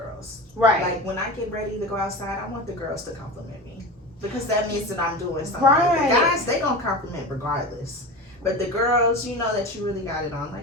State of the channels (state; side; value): normal; both; correlation 0.29